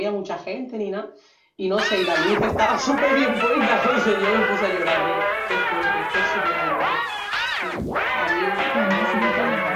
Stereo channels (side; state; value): both; identical; correlation 1.00